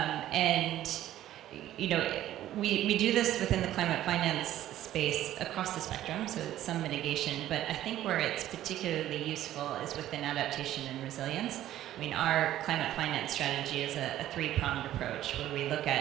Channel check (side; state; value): left; quieter; 13.1 dB